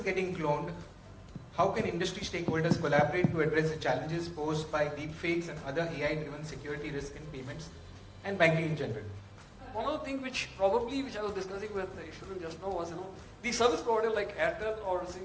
getting cloned. How can industry stakeholders collaborate to address the challenges posed by deepfakes and other AI-driven security risk in payments and banking in general? One of the things which I was discussing with Ishwaran just now was, the service provider like Airtel or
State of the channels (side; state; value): both; identical; correlation 1.00